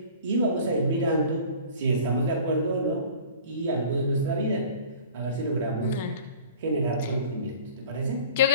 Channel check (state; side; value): inverted; both; correlation -0.45